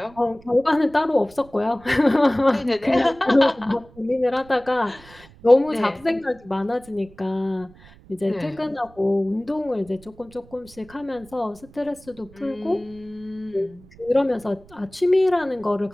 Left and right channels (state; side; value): noise; right; rumble, 24 dB below the sound